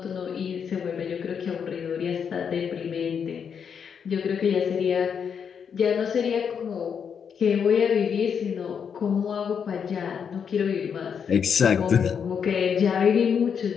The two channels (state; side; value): quieter; right; 7.1 dB